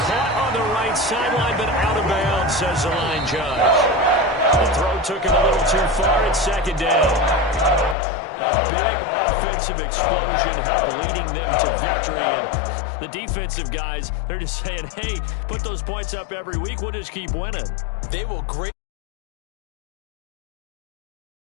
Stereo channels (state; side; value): drops out; right; at 8.0 s